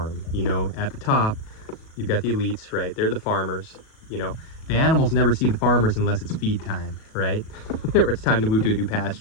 You know, at the top, you've got the elites, right? They're the farmers, you know. The animals never see the farmers unless it's feed time, right? Or it's time to move to a new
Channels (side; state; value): right; late; 37 ms